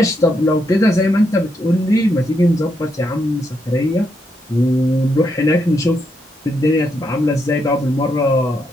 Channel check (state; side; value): normal; both; correlation 0.79